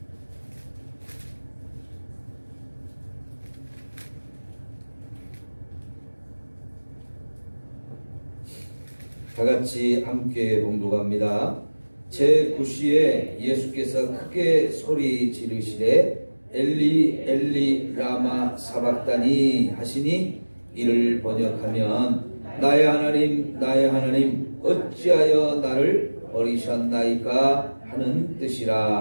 다같이 함께 봉독합니다. 제9시에 예수께서 크게 소리 지르시되 엘리 엘리 라마 사박다니 하시니, 이를 번역하면 나의 하나님 나의 하나님 어찌하여 나를 버리셨나이까 하는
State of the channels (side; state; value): both; inverted; correlation -1.00